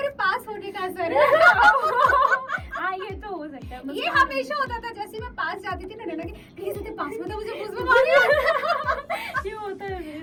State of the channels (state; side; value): identical; both; correlation 1.00